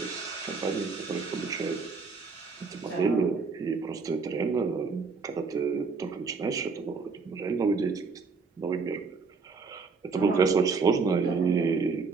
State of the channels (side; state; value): left; quieter; 4.7 dB